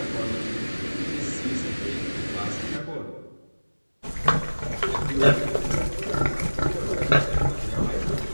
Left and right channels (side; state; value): both; inverted; correlation -1.00